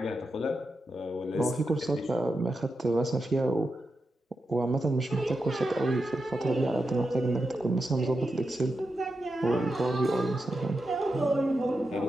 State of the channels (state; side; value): normal; both; correlation 0.88